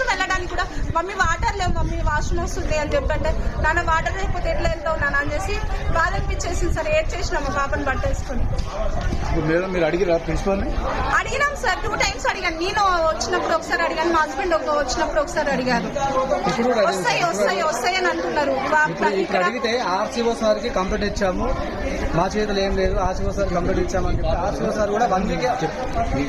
వెళ్ళడానికి కూడా మమ్మీ వాటర్ లేవు, మమ్మీ వాష్రూమ్ వస్తుంది అని చెప్పంటే, నాన్న వాటర్ లేకపోతే ఎట్లా వెళ్తావు నాన్న అని చేసి బాధ అనిపించేసింది సార్. ఏడ్ చేసినా మా పాపని బట్టేసుకొని. అడిగినాం సార్, 2 times అడిగాను. నేను వచ్చినప్పుడు ఒకసారి అడిగాను, మా హస్బెండ్ వచ్చినప్పుడు ఒకసారి అడిగారు. వస్తాయి అని అంటున్నారు. ఇక్కడ అడిగితే ఆర్సీఓ సార్ కి కంప్లైంట్ ఇచ్చాము, మా చేతులు ఏం లేదు, ఆర్సీఓ సార్ కంప్లైంట్ ఇచ్చామని చెప్పి ఆర్సీఓ సార్ కూడా 1 week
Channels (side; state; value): both; identical; correlation 1.00